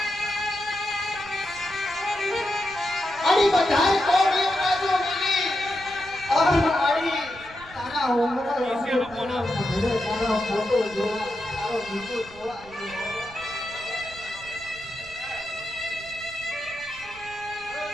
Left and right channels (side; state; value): right; noise; rumble, 21 dB below the sound